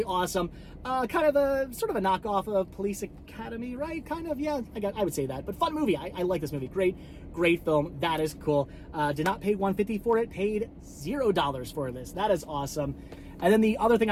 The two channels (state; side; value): identical; both; correlation 1.00